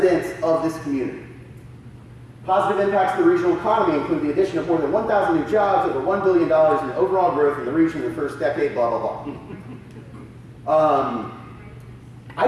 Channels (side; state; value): both; identical; correlation 1.00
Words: of this community. Positive impacts to the regional economy include the addition of more than 1,000 new jobs, over $1 billion in overall growth in the region in the first decade, blah, blah, blah. I